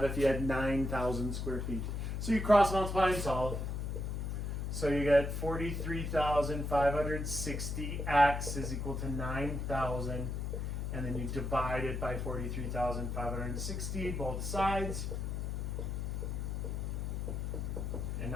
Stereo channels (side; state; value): left; noise; hum, 2 dB below the sound